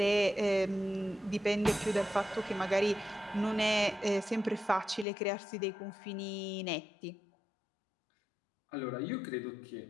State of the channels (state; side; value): drops out; right; at 5.1 s